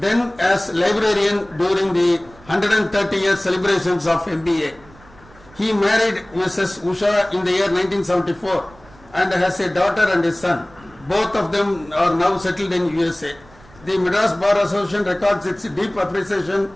then as librarian during the 130 year celebrations of MBA. He married Mrs. Usha in the year 1974 and has a daughter and a son. Both of them are now settled in USA. The Madras Bar Association records its deep appreciation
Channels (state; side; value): noise; right; rumble, 25 dB below the sound